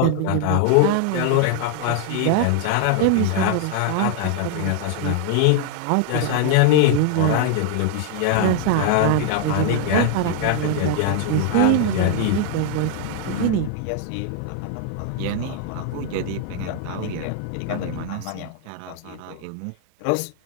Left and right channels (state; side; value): different; both; correlation 0.00